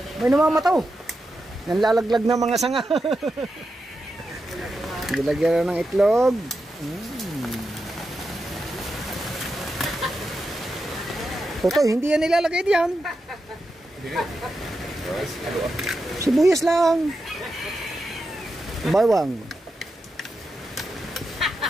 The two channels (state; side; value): normal; both; correlation 0.88